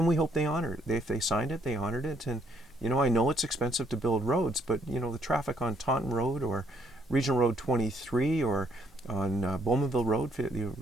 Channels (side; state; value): both; normal; correlation 0.69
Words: we hope they honor it. If they signed it, they honored it. And, I know it's expensive to build roads, but, the traffic on Taunton Road or Regional Road 23 or on Bowmanville Road,